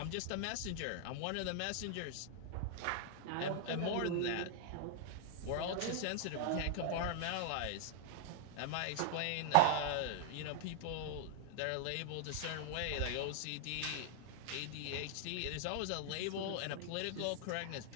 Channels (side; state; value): both; different; correlation -0.01